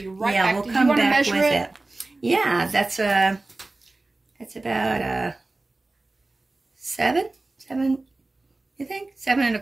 right back. We'll Did come you want to back measure with it? Yeah, that's about 7, you think? 7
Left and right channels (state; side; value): quieter; left; 3.1 dB